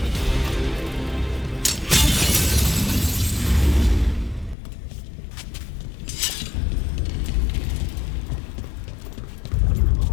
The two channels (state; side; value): drops out; right; at 4.5 s